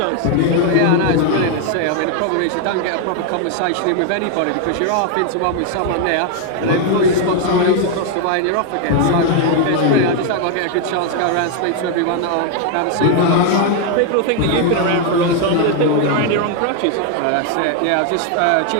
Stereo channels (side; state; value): both; different; correlation 0.01